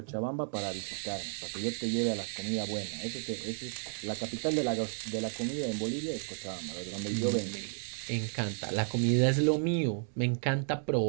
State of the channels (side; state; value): left; silent; 56 dB below the other